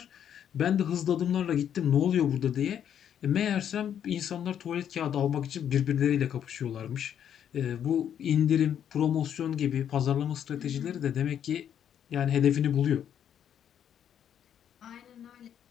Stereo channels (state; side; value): quieter; right; 9.3 dB